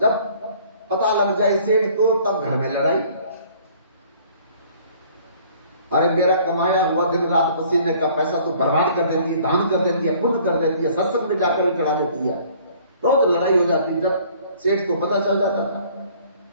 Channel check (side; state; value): both; inverted; correlation -0.55